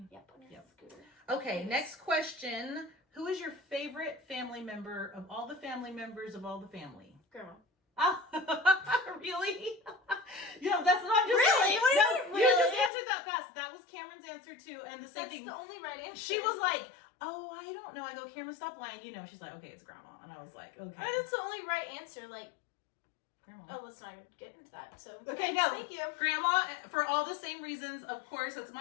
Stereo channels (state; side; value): drops out; right; at 12.9 s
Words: Yep. On your scooter. Okay, Yes. next question. Who is your favorite family member of all the family members of all the family? Grandma. Oh, really? Yeah, that's not just Really? saying. What do you No, mean, you just really? answered that fast. That was Cameron's answer too, and the same That's thing. the only right answer. She was like, "Oh, I don't know." I go, "Cameron, stop lying." You know, she's like, "Okay, it's Grandma," and I was like, "Okay." That's the only right answer. Like, Grandma. oh, let's not even get into that. So Okay, no. Thank you. Grandma, for all the same reasons, of course. It's